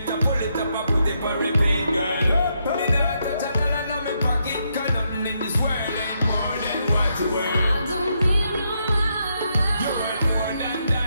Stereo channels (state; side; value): inverted; both; correlation -0.79